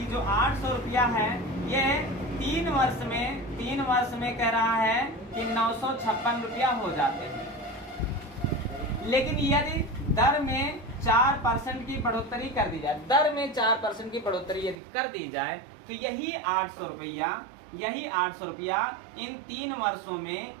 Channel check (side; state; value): left; drops out; at 14.8 s